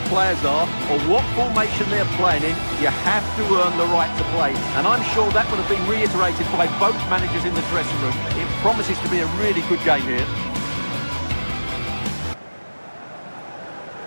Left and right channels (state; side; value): inverted; both; correlation -1.00